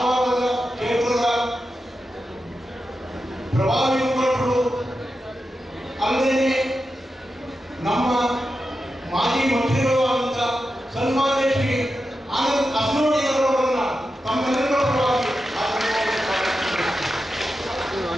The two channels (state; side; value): normal; both; correlation 0.90